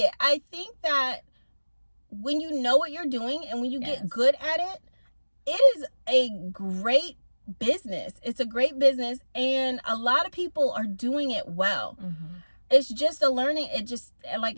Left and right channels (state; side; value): inverted; both; correlation -1.00